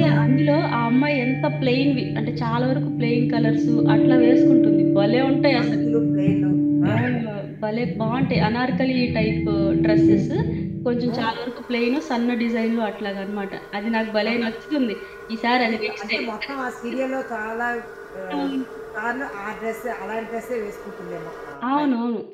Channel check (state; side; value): identical; both; correlation 1.00